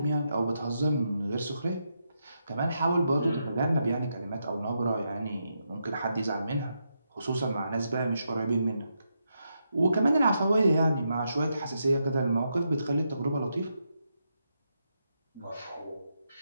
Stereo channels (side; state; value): both; inverted; correlation -0.83